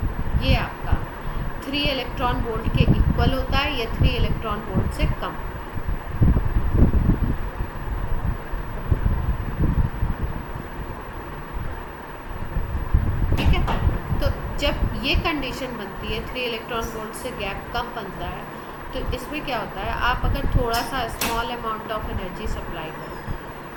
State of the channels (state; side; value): identical; both; correlation 1.00